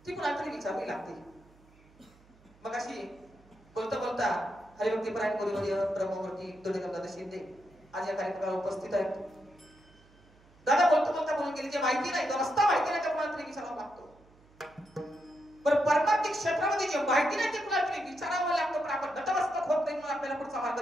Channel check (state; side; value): noise; right; hum, 28 dB below the sound